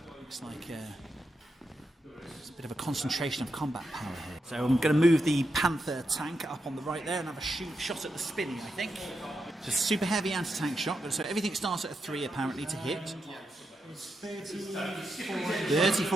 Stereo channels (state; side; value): normal; both; correlation 0.85